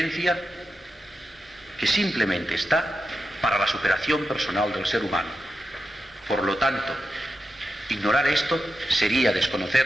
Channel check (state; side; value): normal; both; correlation 0.89